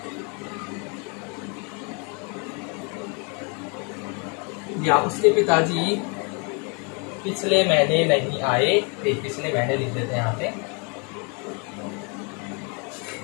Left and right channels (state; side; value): quieter; right; 34.6 dB